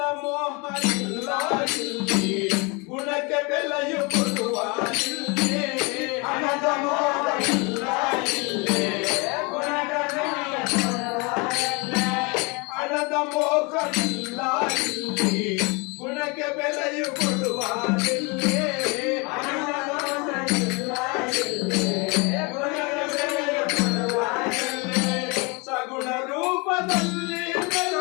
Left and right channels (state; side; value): quieter; right; 29.1 dB